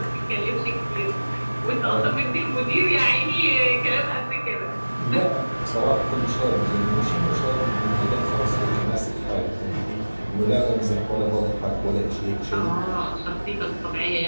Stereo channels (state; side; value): inverted; both; correlation -1.00